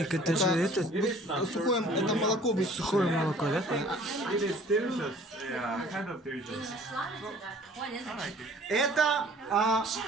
это же это... Сухое, это молоко. Сухое молоко, да? Это,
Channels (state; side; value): normal; both; correlation 0.52